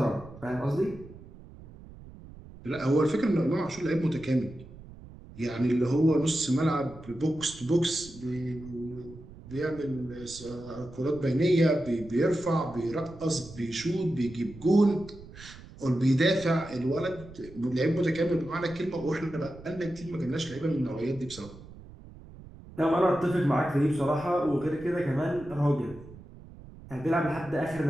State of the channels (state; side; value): noise; right; rumble, 18 dB below the sound